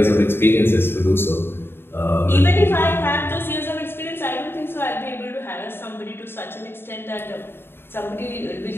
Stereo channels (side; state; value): right; late; 0.11 ms